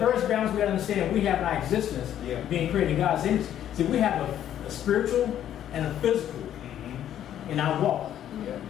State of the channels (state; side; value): quieter; right; 10.9 dB